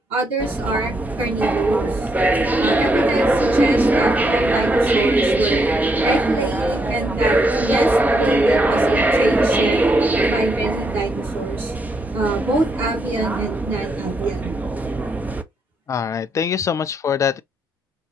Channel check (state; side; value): normal; both; correlation 0.77